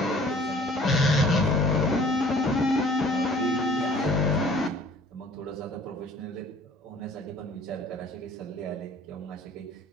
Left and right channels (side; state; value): both; normal; correlation 0.52